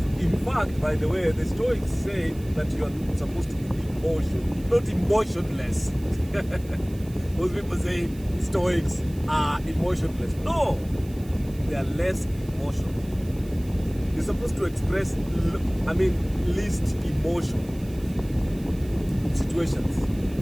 to, in fact, by the way, the Stoics say that you're supposed to be not emotionless. Most people say Stoics are emotionless. No, they are less emotional. You're supposed to express, least emotion in situations.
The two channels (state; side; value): noise; right; hiss, 23 dB below the sound